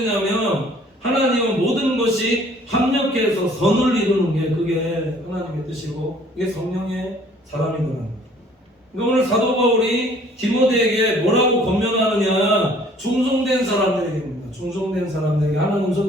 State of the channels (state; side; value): normal; both; correlation 0.56